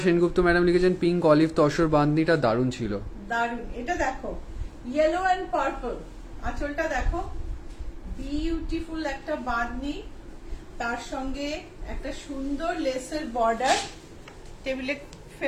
Sengupta madam লিখেছেন পিঙ্ক অলিভ তসর বাঁধনিটা দারুণ ছিল। দারুণ। এটা দেখো ইয়েলো এন্ড পার্পল, আঁচলটা দেখো বিউটিফুল একটা বাঁধনি, তার সঙ্গে একটা সুন্দর লেসের বর্ডার। টেবিলে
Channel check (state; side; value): identical; both; correlation 1.00